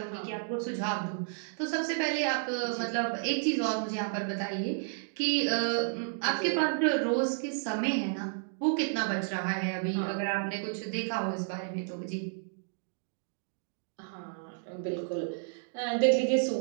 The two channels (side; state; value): left; silent; digital silence